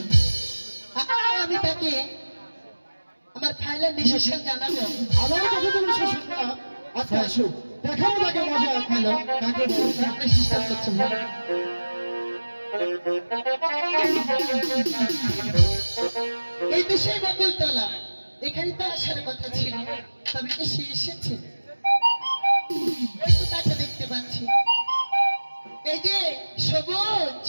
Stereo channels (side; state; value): both; inverted; correlation -1.00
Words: আমি তাকে আমার ফাইনাল ডিসিশন জানাবো। আমার কথা তুমি শেষ না। আচ্ছা আসো, দেখাবো তাকে মজা। হ্যালো, তাকে সিস্টেম করছে। এই বিষয়ে বকুলতলা এখানে তো আসার কথা ছিল, তবে কি সে এসেছে? ওই তো তাকে দেখতে পাচ্ছি, এই যে সবুজ,